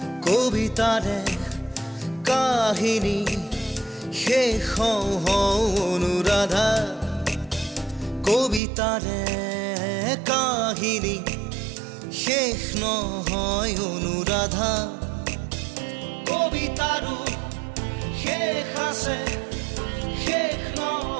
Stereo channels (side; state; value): left; drops out; at 8.6 s